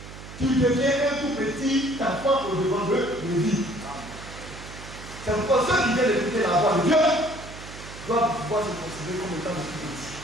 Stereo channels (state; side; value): noise; right; hum, 14 dB below the sound